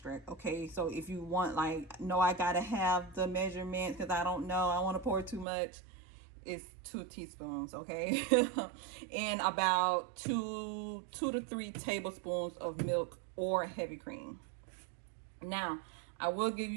Okay, so if you want, like, no, I gotta have the measurements because I don't know, I want to pour too much, it's 2 teaspoons. Okay. And about 2 to 3 tablespoons of milk or heavy cream. Now I will give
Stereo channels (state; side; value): drops out; left; at 5.5 s